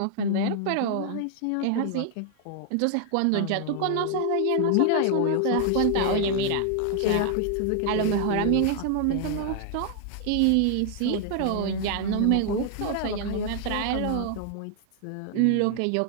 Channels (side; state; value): both; different; correlation 0.00